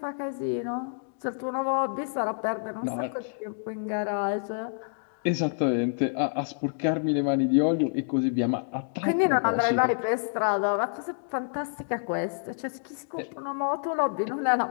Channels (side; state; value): right; silent; digital silence